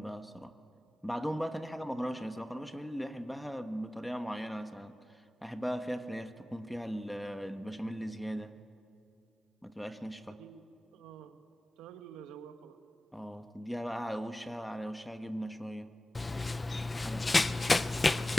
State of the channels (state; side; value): normal; both; correlation 0.97